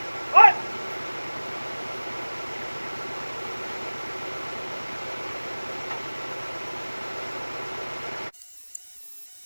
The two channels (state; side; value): inverted; both; correlation -1.00